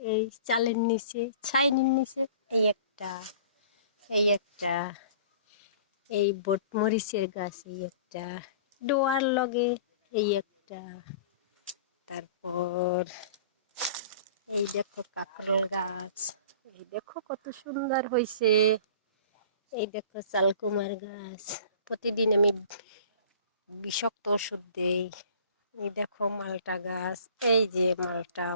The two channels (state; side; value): inverted; both; correlation -0.45